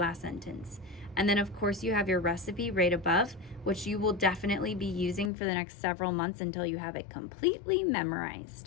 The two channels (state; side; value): drops out; right; at 5.3 s